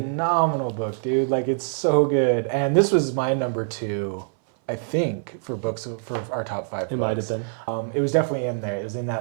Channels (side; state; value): left; silent; 60 dB below the other